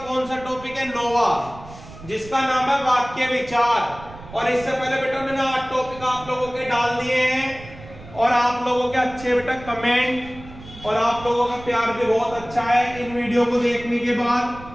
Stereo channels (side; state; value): right; noise; rumble, 17 dB below the sound